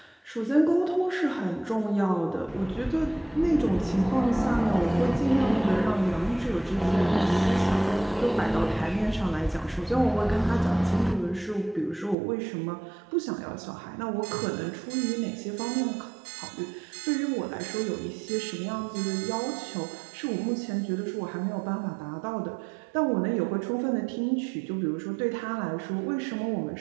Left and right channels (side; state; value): left; drops out; at 12.2 s